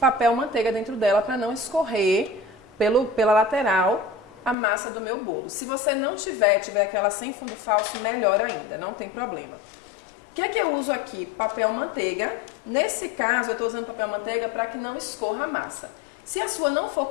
manteiga dentro dela para não escorrer pela lateral a massa do meu bolo. Se você não tiver aquela sem fundo falso, melhor ainda, não tem problema. O que é que eu uso aqui? Papel manteiga. Nesse caso, eu estou usando papel manteiga para que não escorra a massa. Se a sua não for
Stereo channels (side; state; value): right; drops out; at 4.5 s